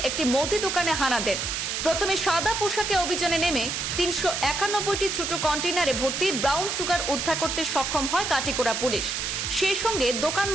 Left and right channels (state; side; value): noise; right; hiss, 2 dB below the sound